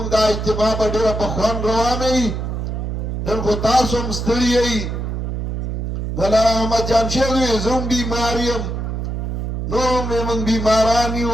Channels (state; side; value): noise; right; hum, 3 dB below the sound